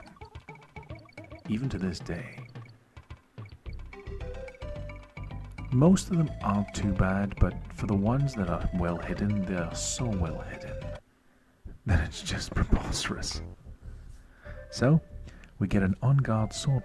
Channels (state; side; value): identical; both; correlation 1.00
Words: Even to this day. Most of them aren't too bad, but for the ones that are well hidden, they are so well hidden that it's just preposterous. So, we get an on-guard